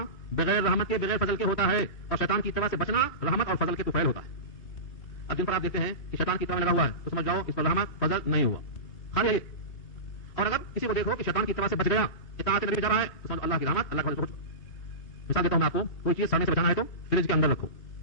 بغیر رحمت کے, بغیر فضل کے ہوتا ہے, اور شیطان کی اتباع سے بچنا رحمت اور فضل کے طفیل ہوتا ہے. اب جن پر آپ دیکھتے ہیں کہ شیطان کی اتباع میں لگا ہوا ہے تو سمجھ جاؤ اس پر رحمت فضل نہیں ہوا, خالی ہے یہ. اور اگر کسی کو دیکھو کہ شیطان کی اتباع سے بچ گیا, اطاعت نبی جا رہا ہے, تو سمجھو اللہ کی رحمت, اللہ کا فضل. مثال دیتا ہوں میں آپ کو, کوئی چیز سڑنے سے بچانا ہے تو فریج کے اندر رکھو,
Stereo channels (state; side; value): late; right; 3.3 ms